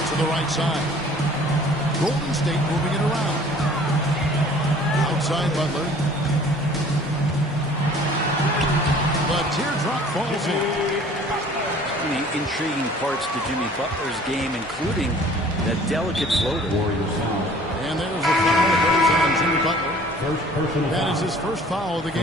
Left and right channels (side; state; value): both; normal; correlation 0.51